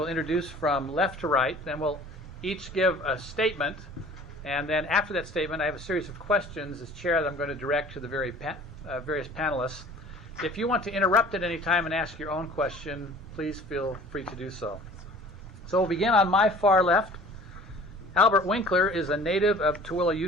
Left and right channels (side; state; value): both; normal; correlation 0.47